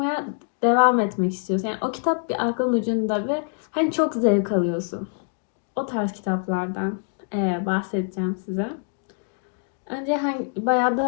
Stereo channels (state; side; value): silent; right; 57 dB below the other